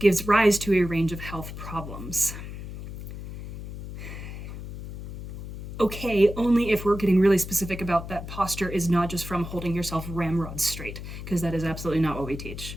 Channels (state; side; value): noise; left; hum, 10 dB below the sound